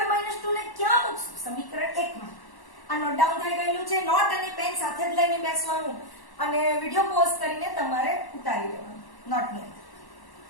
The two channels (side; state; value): right; late; 1.1 ms